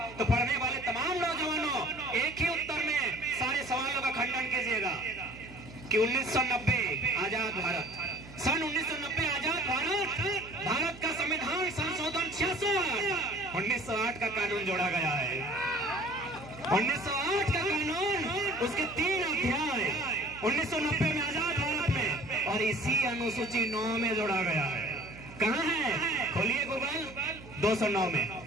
तो पढ़ने वाले तमाम नौजवानों एक ही उत्तर में सारे सवालों का खंडन कीजिएगा कि 1990 आजाद भारत, सन 1990 आजाद भारत, भारत का संविधान संशोधन 66 1908 का कानून जोड़ा गया है। 1908 का कानून, उसके 3 अध्याय 1990 में आजाद भारत में, और इसी अनुसूची 9 में जोड़ा गया है। कहाँ है? खोलिए गूगल। 209 में,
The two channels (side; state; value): right; noise; hum, 17 dB below the sound